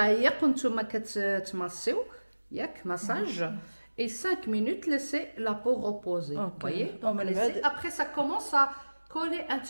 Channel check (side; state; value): both; inverted; correlation -1.00